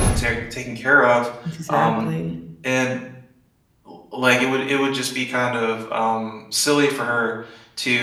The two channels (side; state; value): both; identical; correlation 1.00